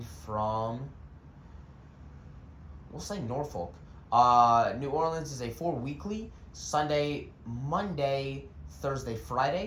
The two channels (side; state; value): both; identical; correlation 1.00